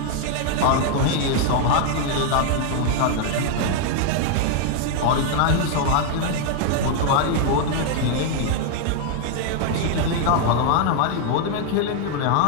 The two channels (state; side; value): different; both; correlation 0.00